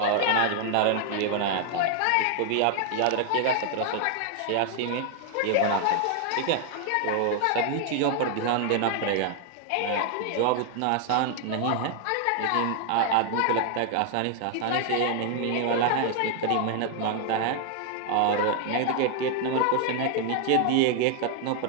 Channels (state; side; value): different; both; correlation 0.00